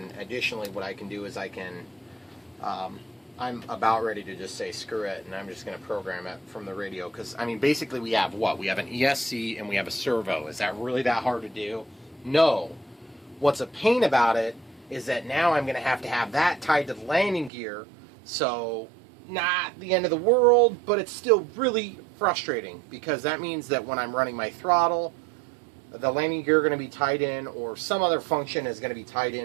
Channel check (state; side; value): drops out; left; at 17.5 s